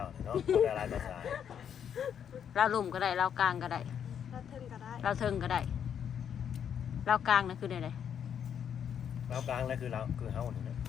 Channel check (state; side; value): quieter; right; 8.4 dB